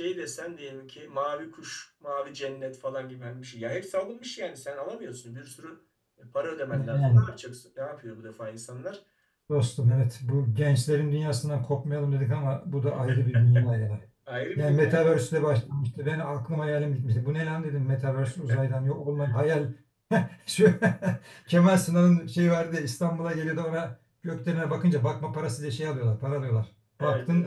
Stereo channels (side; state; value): both; identical; correlation 1.00